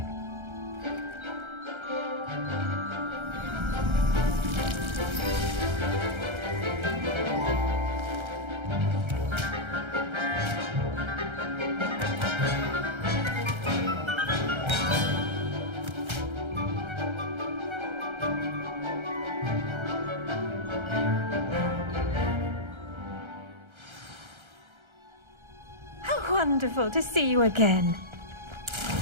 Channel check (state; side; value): late; left; 1.3 ms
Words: Wonderful to see you again.